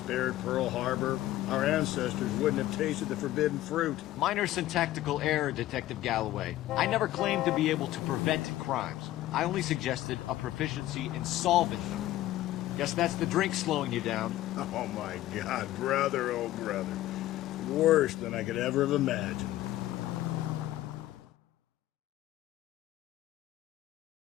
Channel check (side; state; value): right; quieter; 14.9 dB